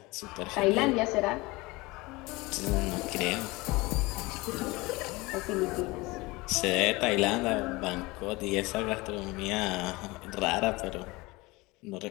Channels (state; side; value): quieter; right; 22.8 dB